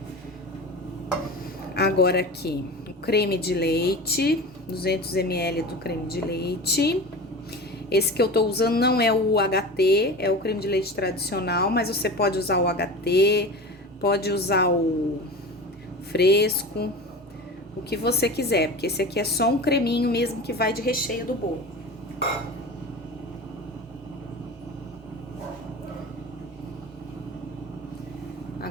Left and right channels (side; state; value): both; normal; correlation 0.32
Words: Agora aqui, o creme de leite, 200 ml do creme de leite. Esse que eu tô usando não é o UHT, é o creme de leite tradicional, mas você pode usar o UHT, pode usar o fresco, o que você quiser, porque esse aqui é só um creminho mesmo que vai de recheio do bolo.